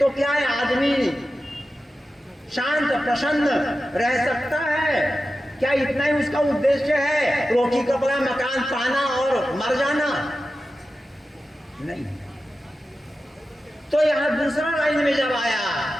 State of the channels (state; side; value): normal; both; correlation 0.93